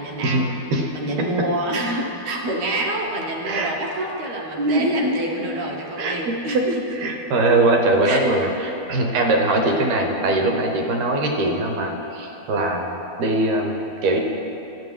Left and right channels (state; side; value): late; left; 12 ms